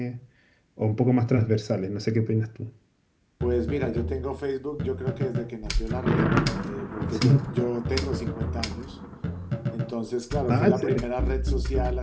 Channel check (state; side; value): identical; both; correlation 1.00